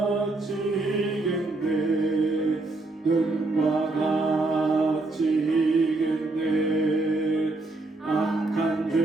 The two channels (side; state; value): left; quieter; 3.1 dB